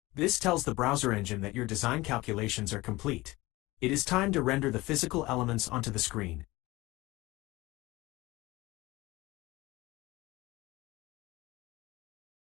This tells the browser engine that your design calculations are complete. It is time to render the physical elements onto the screen.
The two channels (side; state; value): right; quieter; 20.3 dB